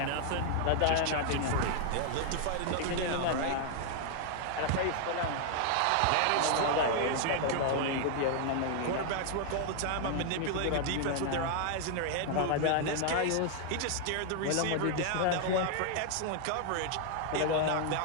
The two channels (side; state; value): both; different; correlation 0.00